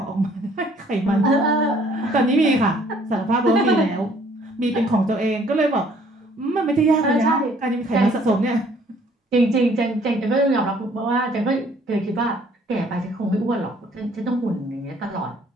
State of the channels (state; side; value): normal; both; correlation 0.60